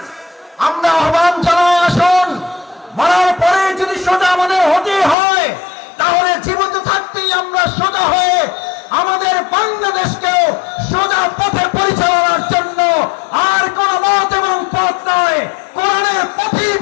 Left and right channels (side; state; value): right; drops out; at 5.2 s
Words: আমরা আহ্বান জানাই, আসুন, মরার পরে যদি সোজা আমাদের হতে হয়, তাহলে জীবিত থাকতেই আমরা সোজা হয়ে আমাদের বাংলাদেশকেও সোজা পথে পরিচালনার জন্য আর কোন মত এবং পথ নয়, কোরআনের পথেই